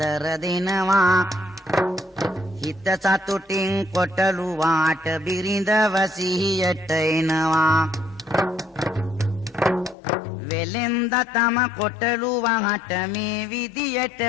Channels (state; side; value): drops out; right; at 10.0 s